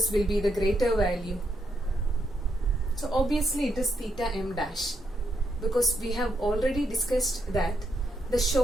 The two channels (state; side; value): normal; both; correlation 0.80